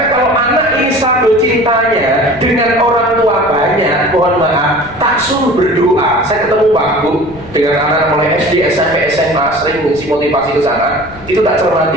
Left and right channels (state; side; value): noise; left; rumble, 19 dB below the sound